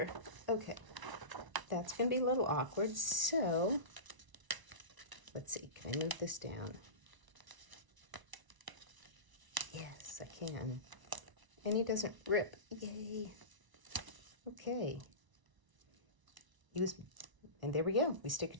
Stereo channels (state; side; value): late; left; 1.0 ms